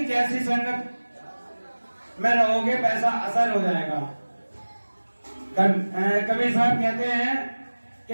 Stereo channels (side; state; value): both; inverted; correlation -1.00